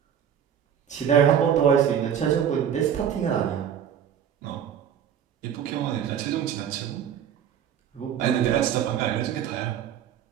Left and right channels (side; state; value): left; quieter; 8.9 dB